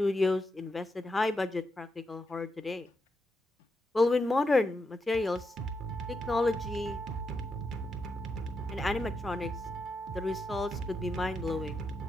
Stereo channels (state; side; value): normal; both; correlation 0.84